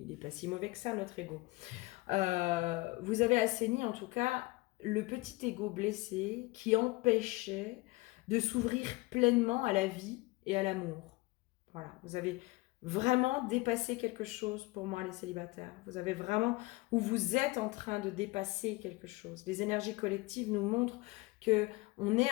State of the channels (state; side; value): quieter; right; 22.8 dB